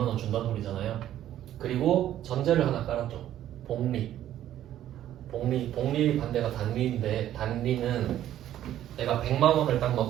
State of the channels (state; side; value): quieter; left; 12.1 dB